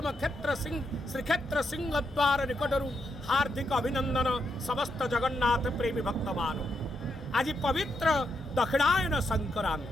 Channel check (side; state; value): both; normal; correlation 0.81